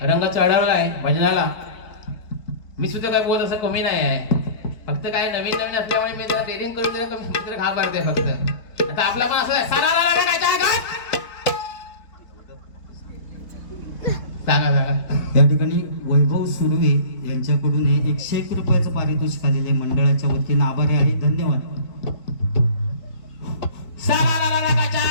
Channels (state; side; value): late; right; 4.1 ms